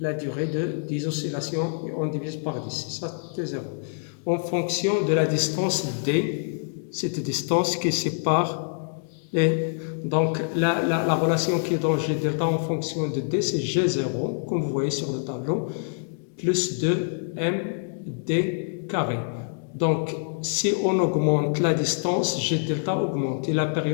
durée de 10 oscillations et on divise par 10. Ça, c'est 0. En fonction de la distance D, cette distance qui sépare donc la relation qui est dans G delta en fonction de D, c'est G0, comme vous voyez sur le tableau, plus 2md carré. Donc, si on augmente la distance, G delta augmente et la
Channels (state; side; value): silent; right; digital silence